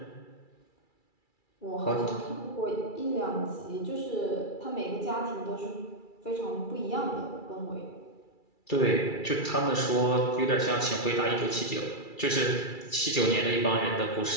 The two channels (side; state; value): right; late; 2.3 ms